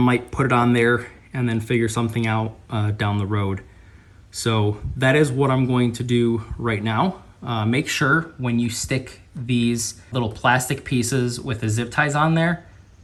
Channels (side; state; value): both; identical; correlation 1.00